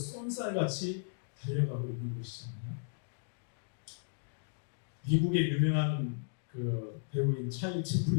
달려가고 있는 것이잖아요. 미국의 유명한 그 배우인 찰리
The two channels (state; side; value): silent; right; digital silence